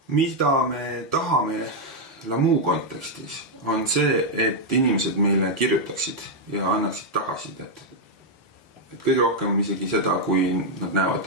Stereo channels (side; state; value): both; normal; correlation -0.01